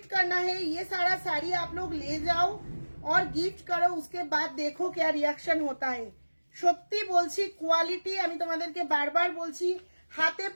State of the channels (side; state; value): both; inverted; correlation -1.00